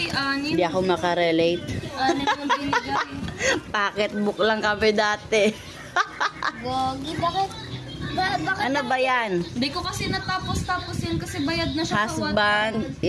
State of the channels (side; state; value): both; identical; correlation 1.00